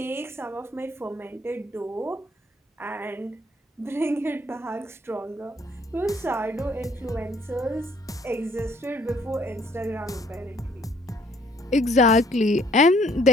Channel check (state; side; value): normal; both; correlation 0.62